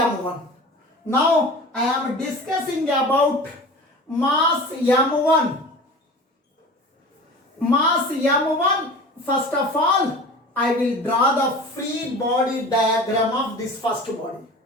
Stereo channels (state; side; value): normal; both; correlation 0.37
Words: Now, I am discussing about mass m1. Mass m1, first of all, I will draw the free body diagram of this first body.